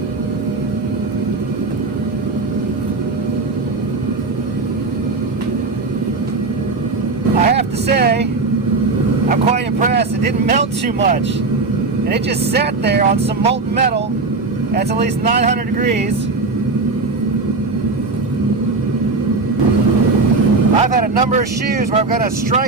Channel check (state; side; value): quieter; left; 3.7 dB